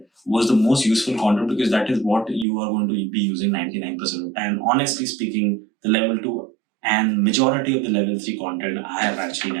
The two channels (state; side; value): drops out; left; at 2.5 s